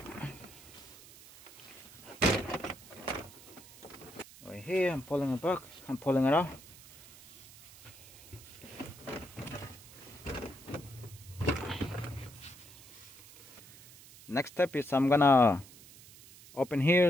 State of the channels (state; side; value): noise; right; hiss, 20 dB below the sound